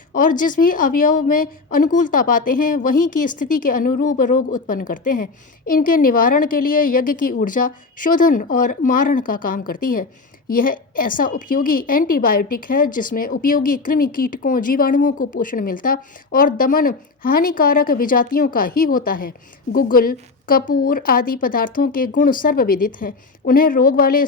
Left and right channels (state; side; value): quieter; right; 4.0 dB